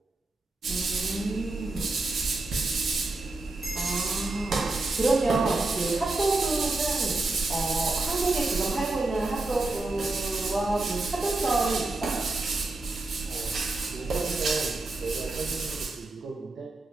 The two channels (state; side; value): quieter; left; 3.1 dB